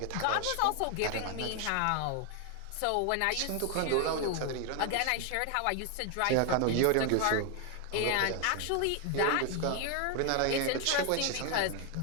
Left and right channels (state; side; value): different; both; correlation 0.01